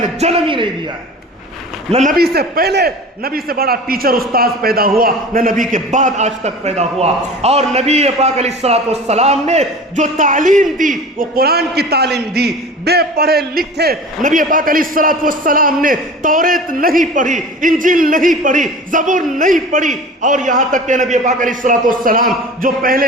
جنم ہی نہیں دیا ہے۔ نہ نبی سے پہلے نبی سے بڑا ٹیچر استاذ پیدا ہوا، نہ نبی کے بعد آج تک پیدا ہوا۔ اور نبی پاک علیہ السلام نے جو تعلیم دی وہ قرآن کی تعلیم دی۔ بے پڑھے لکھے نبی پاک علیہ السلام نے توریت نہیں پڑھی، انجیل نہیں پڑھی، زبور نہیں پڑھی، اور یہاں تک کہ نبی پاک علیہ السلام جو پہلے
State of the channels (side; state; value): both; normal; correlation 0.38